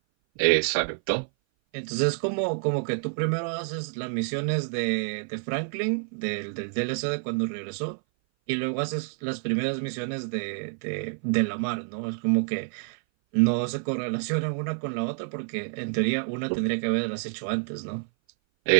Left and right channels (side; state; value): left; silent; 57 dB below the other